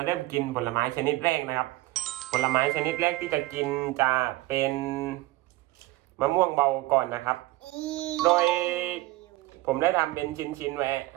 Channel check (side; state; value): left; quieter; 18.4 dB